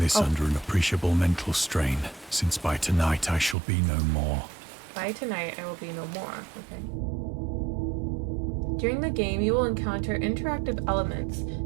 under an appreciable mental strain, since by tonight I shall be no more. By tonight I will be no more. Okay. During the game, you will encounter interactive elements.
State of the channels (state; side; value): drops out; left; at 3.6 s